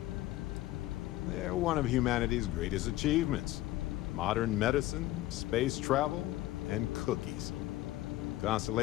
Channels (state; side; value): quieter; right; 16.2 dB